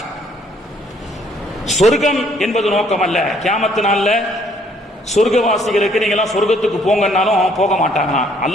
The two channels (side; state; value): both; normal; correlation 0.64